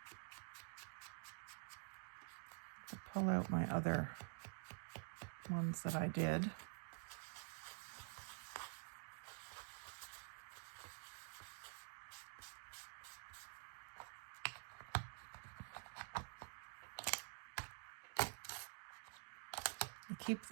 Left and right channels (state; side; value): silent; left; digital silence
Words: pull out my other ones that I did. I keep